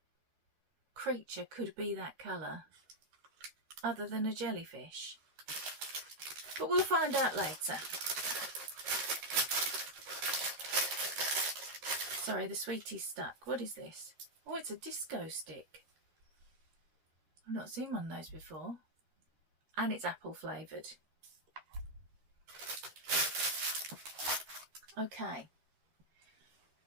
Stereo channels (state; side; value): late; left; 13 ms